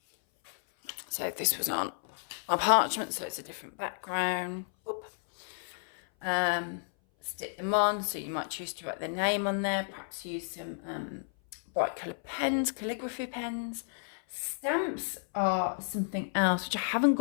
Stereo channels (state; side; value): silent; right; 56 dB below the other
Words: So this was on a parchment, so it's a different background. Stick them on, so you might choose to write their name on there, perhaps use some bright coloured pens, calligraphy pens. Stamps are something else which I haven't